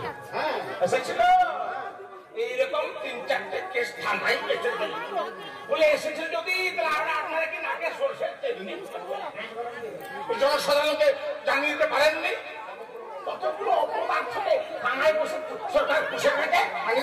হ্যাঁ এসেছিল, এইরকম 3-4টে কেস থানায় বলে এসেছিল। যদি তাহলে আপনারা কি নাকে সরষের তেল নেই, জনসাধারণকে জানিয়ে দিতে পারেননি? কতগুলো অপদার্থকে থানায় বসে সরকার পুষে থাকে,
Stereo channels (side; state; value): both; identical; correlation 1.00